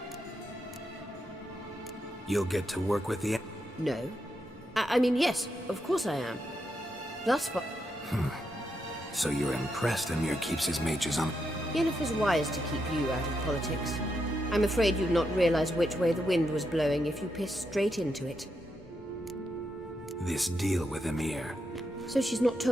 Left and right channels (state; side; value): normal; both; correlation 0.83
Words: You'll get to work with the... No. I mean, yes, of course I am. Thus far... So you're impressed Emir keeps his mages on... Yennefer's wise to keep you out of politics. I'm afraid you'd not realize which way the wind was blowing if you pissed straight into it. This deal with Emir. So she's not